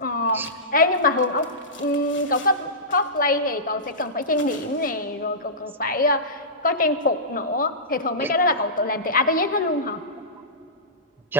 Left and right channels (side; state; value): both; normal; correlation -0.19